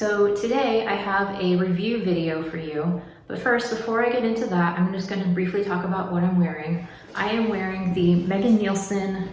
today I have a review video for you, but first before I get into that I'm just going to briefly talk about what I'm wearing. I am wearing the Megan Nielsen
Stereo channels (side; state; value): both; identical; correlation 1.00